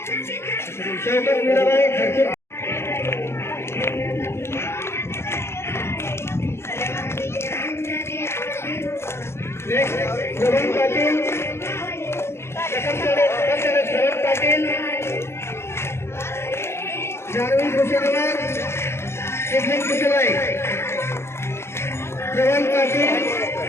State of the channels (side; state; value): right; late; 0.12 ms